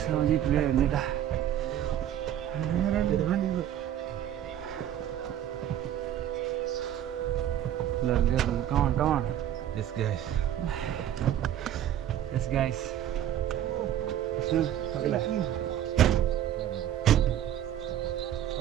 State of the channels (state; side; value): quieter; left; 11.0 dB